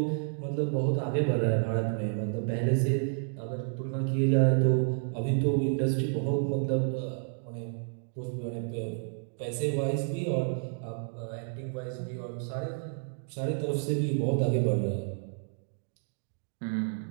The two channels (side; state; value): left; silent; digital silence